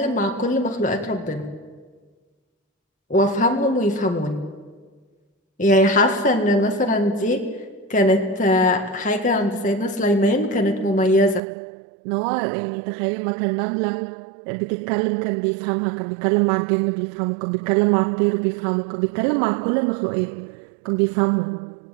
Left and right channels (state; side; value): drops out; left; at 11.4 s